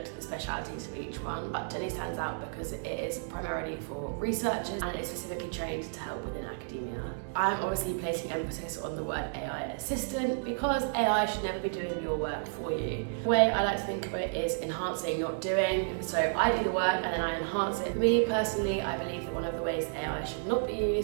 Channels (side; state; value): left; silent; digital silence